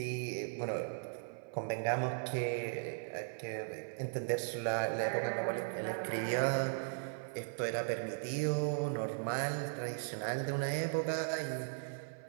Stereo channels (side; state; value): left; silent; 53 dB below the other